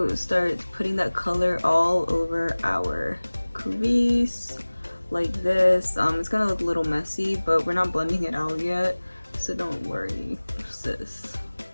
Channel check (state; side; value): inverted; both; correlation -1.00